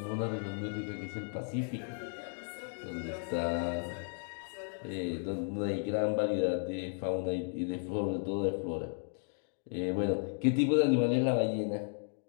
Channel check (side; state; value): right; silent; 55 dB below the other